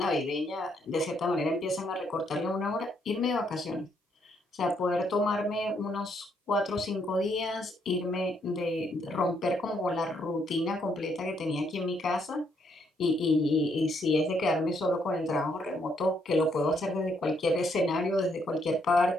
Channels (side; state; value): both; normal; correlation 0.73